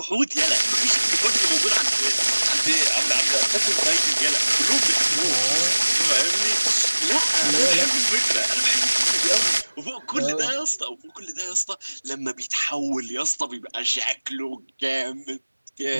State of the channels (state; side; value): inverted; both; correlation -1.00